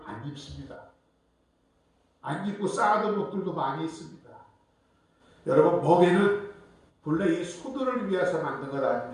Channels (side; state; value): both; identical; correlation 1.00